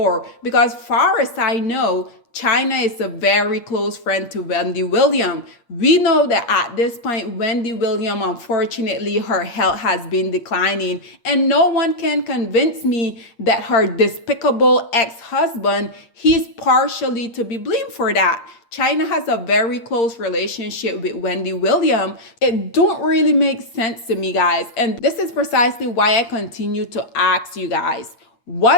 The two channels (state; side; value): late; right; 8.6 ms